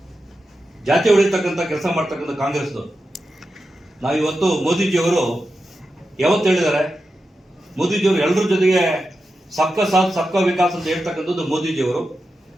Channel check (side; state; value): both; normal; correlation 0.90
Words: ಜಾತಿ ಹೊಡಿತಕ್ಕಂಥ ಕೆಲಸ ಮಾಡ್ತಕ್ಕಂಥ ಕಾಂಗ್ರೆಸ್ದವರು. ನಾವು ಇವತ್ತು ಮೋದಿಜಿಯವರು ಯಾವತ್ತು ಹೇಳಿದ್ದಾರೆ? ಮೋದಿಜಿಯವರು ಎಲ್ಲರ ಜೊತೆಗೆ ಸಬ್ಕಾ ಸಾಥ್ ಸಬ್ಕಾ ವಿಕಾಸ್ ಅಂತ ಹೇಳ್ತಕ್ಕಂಥದ್ದು ಮೋದಿಜಿಯವರು.